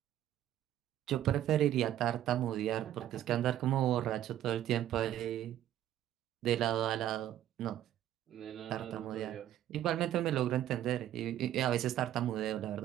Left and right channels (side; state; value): left; quieter; 12.1 dB